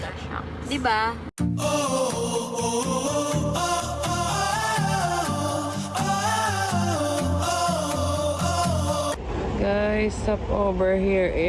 siya. Di ba? Guys, stop over here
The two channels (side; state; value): both; identical; correlation 1.00